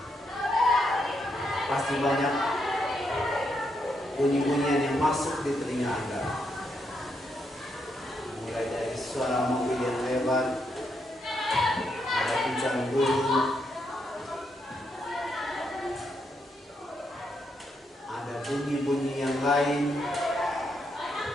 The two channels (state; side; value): normal; both; correlation 0.79